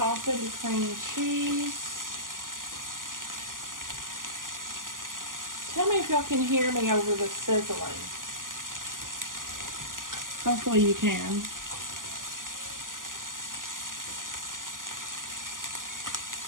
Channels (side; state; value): left; late; 0.89 ms